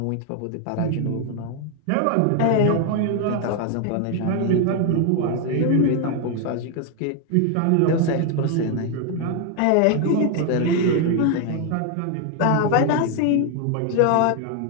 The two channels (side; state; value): both; different; correlation 0.01